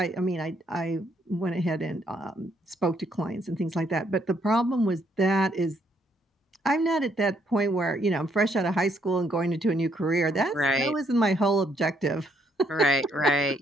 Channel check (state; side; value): normal; both; correlation 0.71